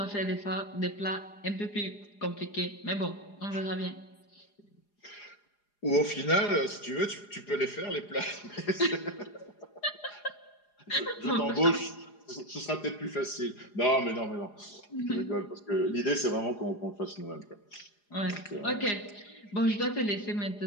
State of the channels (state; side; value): late; right; 4.9 ms